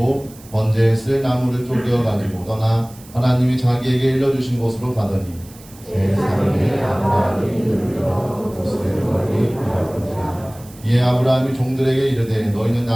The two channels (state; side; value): noise; right; hiss, 22 dB below the sound